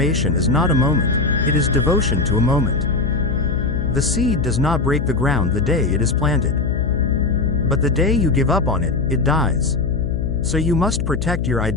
is not a moment, it is devotion to a moment. The seed does not break the ground the day it is planted. But the day you give up on it, it dies. So you must protect your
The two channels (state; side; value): noise; left; hum, 2 dB below the sound